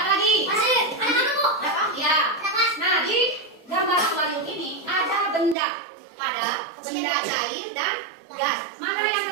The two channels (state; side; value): drops out; left; at 5.6 s